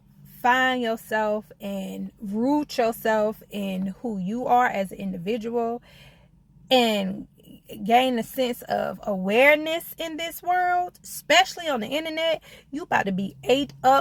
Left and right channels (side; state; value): both; identical; correlation 1.00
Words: find yourself and root yourself in who you are as an individual and gain a sense of awareness in this world, especially on the internet. You about to be ate